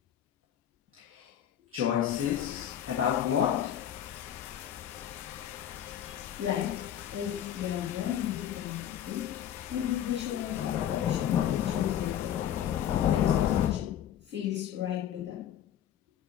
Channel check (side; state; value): right; quieter; 10.4 dB